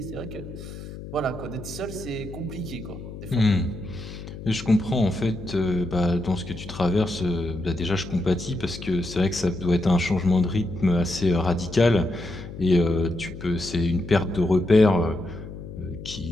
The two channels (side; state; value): left; noise; hum, 12 dB below the sound